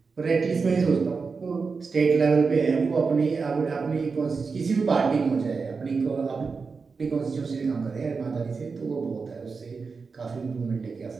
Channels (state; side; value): quieter; left; 4.8 dB